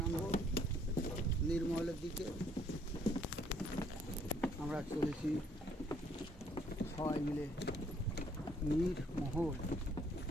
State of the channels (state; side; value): normal; both; correlation 0.65